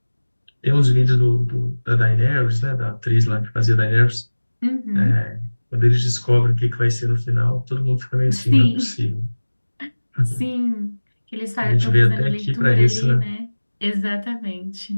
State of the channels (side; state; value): both; inverted; correlation -1.00